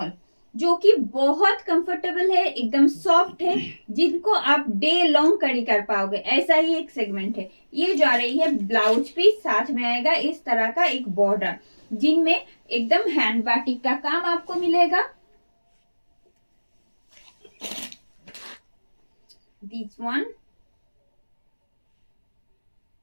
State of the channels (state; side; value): inverted; both; correlation -1.00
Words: जो कि बहुत कंफर्टेबल है, एकदम सॉफ्ट है, जिनको आप डे लॉन्ग कैरी कर पाओगे, ऐसा ही एक सेगमेंट है। ये जा रही है ब्लाउज पीस, साथ में आएगा इस तरह का एक बॉर्डर, जिनमें एकदम हैंड बाटिक का काम आपको मिलेगा। दिस वन